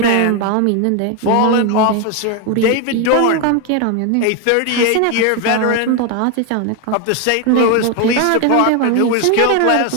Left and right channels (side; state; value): both; different; correlation 0.01